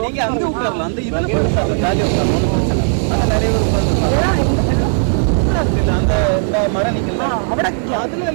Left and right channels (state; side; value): silent; left; digital silence